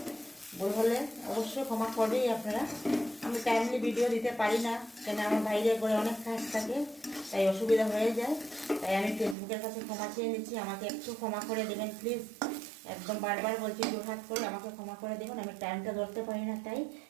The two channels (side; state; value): left; drops out; at 9.3 s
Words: ভুল হলে অবশ্যই ক্ষমা করবেই আপনারা। আমি টাইমলি ভিডিও দিতে পারি না, কেন আমার বাইরে করে অনেক কাজ থাকে, তাই অসুবিধা হয়ে যায়। তাই আমি ফেসবুকের কাছে ক্ষমা চেয়ে নিচ্ছি, আমাকে একটু ক্ষমা করে দেবেন প্লিজ। একদম বারবার বলছি, জোরহাত করে আমাকে ক্ষমা করে দেবেন। আমি টাইমটা ধরতে পারি না তাই,